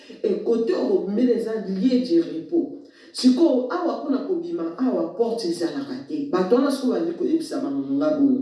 et côté bobimela eza lieu du repos siko awa kuna kobima awa porte ezalaka te bato wana siko bandi koyebisa bango nga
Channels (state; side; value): identical; both; correlation 1.00